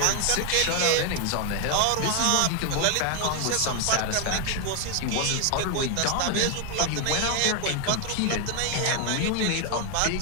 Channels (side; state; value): both; different; correlation 0.00